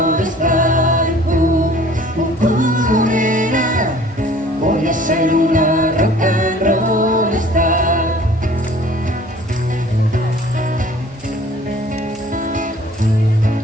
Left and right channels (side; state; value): both; normal; correlation 0.51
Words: star. Nena, voy a ser una rock and roll star.